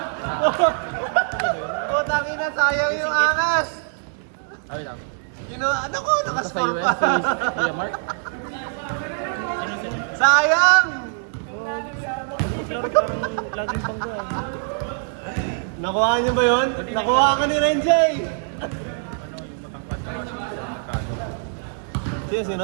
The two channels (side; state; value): left; silent; 61 dB below the other